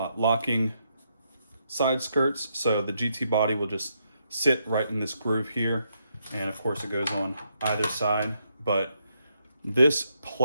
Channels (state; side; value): inverted; both; correlation -0.78